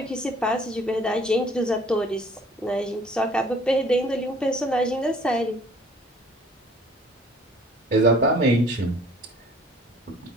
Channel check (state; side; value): normal; both; correlation 0.54